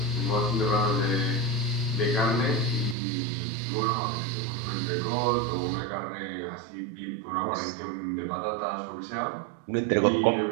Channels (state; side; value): drops out; left; at 3.0 s